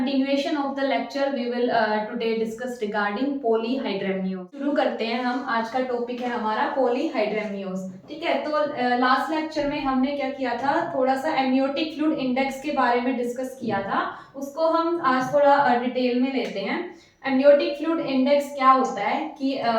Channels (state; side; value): identical; both; correlation 1.00